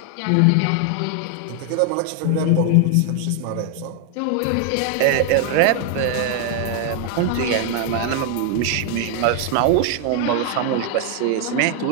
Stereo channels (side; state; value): both; different; correlation 0.00